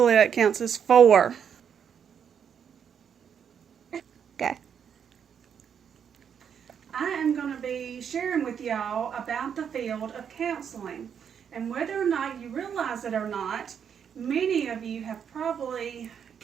that counts as 4. Okay. I am going to be sharing with y'all about the field of counseling. And whether or not you realize it or not, many of you have probably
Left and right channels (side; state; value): left; quieter; 7.8 dB